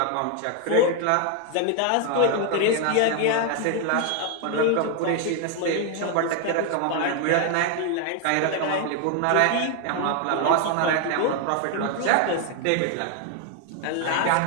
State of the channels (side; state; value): both; different; correlation 0.01